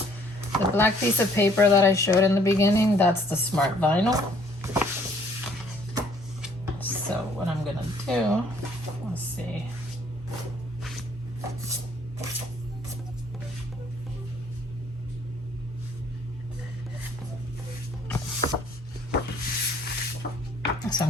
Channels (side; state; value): both; normal; correlation 0.61